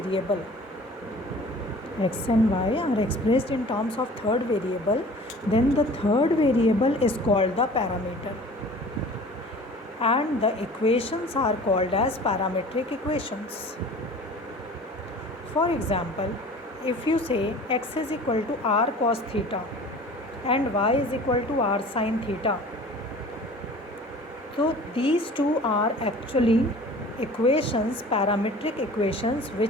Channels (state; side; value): normal; both; correlation 0.44